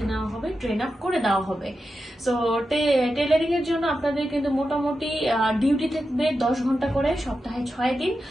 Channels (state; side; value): normal; both; correlation 0.90